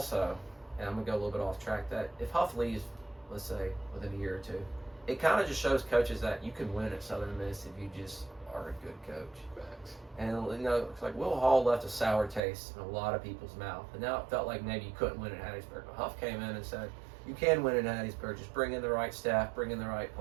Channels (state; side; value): drops out; left; at 12.4 s